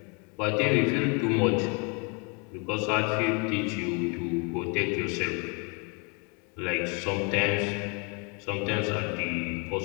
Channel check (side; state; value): right; quieter; 33.9 dB